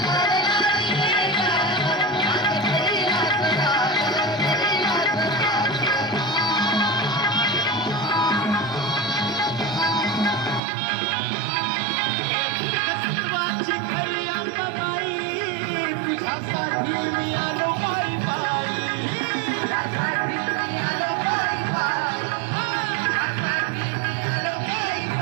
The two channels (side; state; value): left; drops out; at 10.6 s